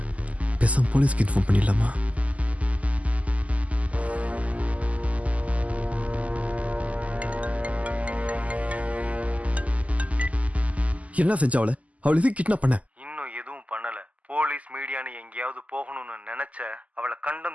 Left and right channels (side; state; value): left; late; 0.070 ms